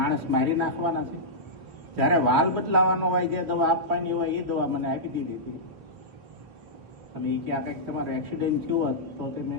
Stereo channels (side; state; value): left; late; 3.1 ms